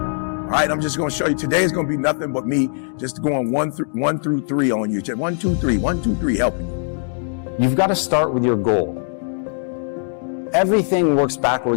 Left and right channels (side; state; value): right; silent; 65 dB below the other